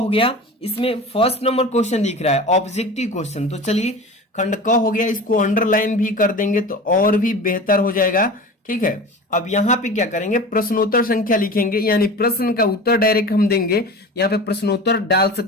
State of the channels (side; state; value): both; normal; correlation 0.34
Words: गया। इसमें फर्स्ट नंबर क्वेश्चन दिख रहा है ऑब्जेक्टिव क्वेश्चन। तो चलिए खंड क हो गया, इसको अंडरलाइन भी कर देंगे तो और भी बेहतर हो जाएगा, ठीक है। अब यहाँ पे क्या करेंगे, प्रश्नोत्तर संख्या लिखेंगे, यानी प्रश्न का उत्तर डायरेक्ट हम देंगे। यहाँ पे प्रश्नोत्तर डाल